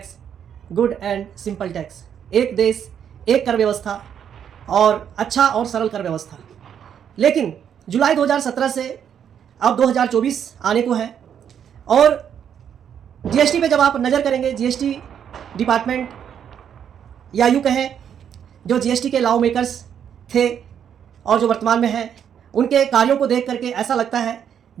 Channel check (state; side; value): quieter; left; 8.6 dB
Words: good and simple tax. एक देश एक कर व्यवस्था और अच्छा और सरल कर व्यवस्था। लेकिन जुलाई 2017 से अब 2024 आने को है और जीएसटी पे जब आप नज़र करेंगे, जीएसटी डिपार्टमेंट या यूँ कहें जो जीएसटी के लॉ मेकर्स थे और जो वर्तमान में हैं, उनके कार्यों को देख करके ऐसा लगता है